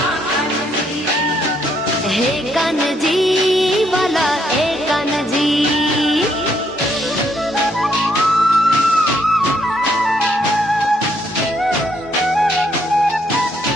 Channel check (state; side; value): normal; both; correlation 0.72